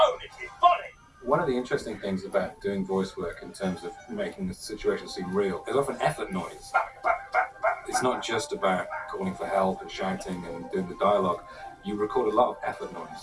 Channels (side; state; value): both; identical; correlation 1.00